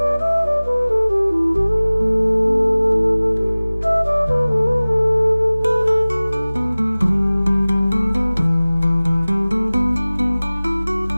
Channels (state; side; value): inverted; both; correlation -0.99